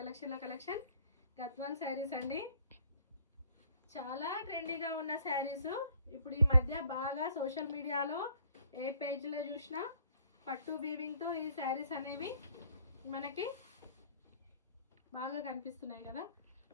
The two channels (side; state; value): both; inverted; correlation -0.58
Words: Gadwal saris అండి. చాలా ట్రెండీగా ఉన్న శారీస్ ఇప్పుడు ఈ మధ్య బాగా సోషల్ మీడియాలో ఏ పేజ్లో చూసినా పట్టు వీవింగ్తో ఈ శారీస్ అనేవి మనకి బాగా కనిపిస్తున్నాయి కదా.